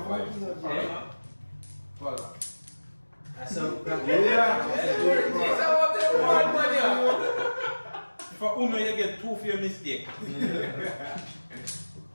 five. Yeah. Follow. That's a If I Uno, you get 2 for your mistake.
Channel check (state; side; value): inverted; both; correlation -1.00